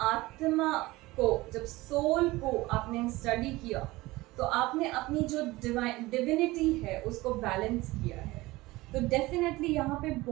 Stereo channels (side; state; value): left; quieter; 19.9 dB